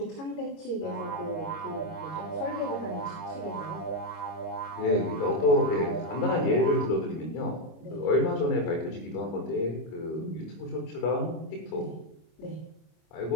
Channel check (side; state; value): right; late; 25 ms